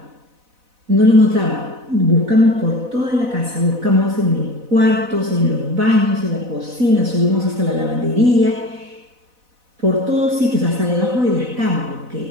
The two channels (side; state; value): left; late; 4.0 ms